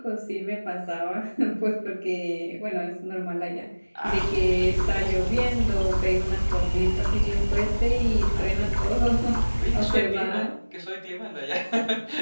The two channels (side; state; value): both; inverted; correlation -1.00